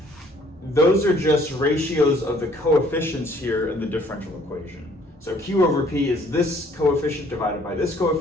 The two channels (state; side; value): normal; both; correlation 0.60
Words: those are just ratios of the coefficients here in the differential equation. So q over p is this coefficient divided by this